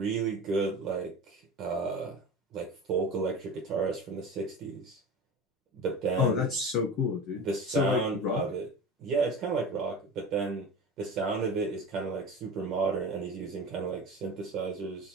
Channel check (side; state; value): both; normal; correlation 0.31